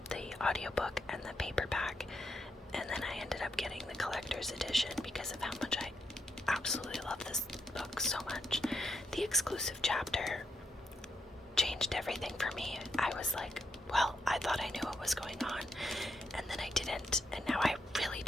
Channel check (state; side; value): normal; both; correlation 0.80